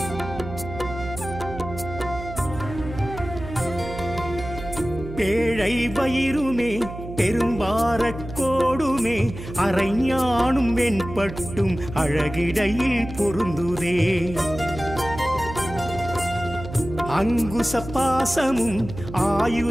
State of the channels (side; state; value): right; noise; hum, 11 dB below the sound